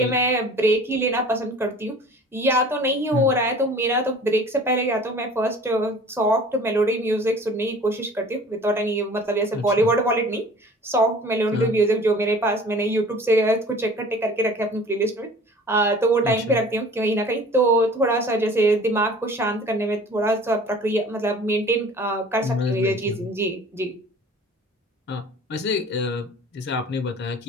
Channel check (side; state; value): both; normal; correlation 0.46